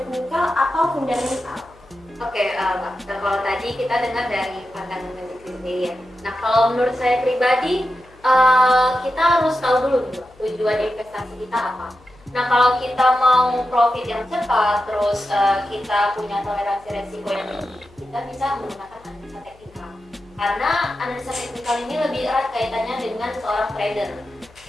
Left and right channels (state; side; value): noise; left; hum, 27 dB below the sound